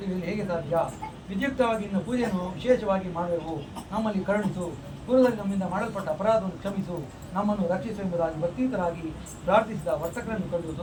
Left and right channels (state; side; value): identical; both; correlation 1.00